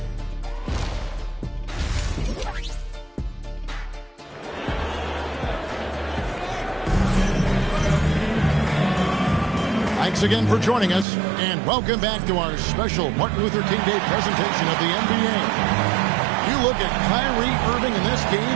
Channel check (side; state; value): left; drops out; at 11.1 s